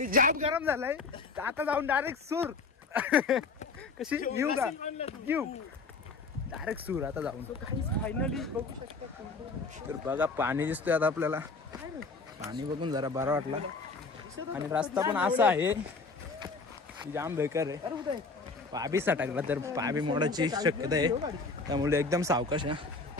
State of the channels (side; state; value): right; quieter; 4.1 dB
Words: जाम गरम झालाय. आता जाऊन डायरेक्ट सूर. कशी येऊ का? येऊ डायरेक्ट सूर आता जाऊन. फायनली बघू शकता. तर बघा पाणी दिसतोय आता आपल्याला. पाणी बघून जरा बरं वाटला. आणि रस्ता पण असा आहे जाम बेकार आहे. पाबी सटकला तर पाबी मोडायची शक्यता आहे, त्यामुळे एकदम सावकाश आहे.